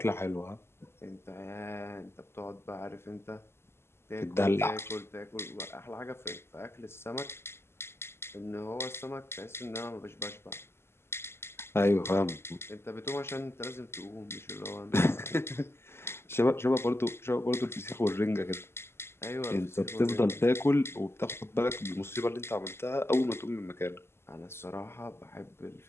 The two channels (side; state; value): right; late; 0.12 ms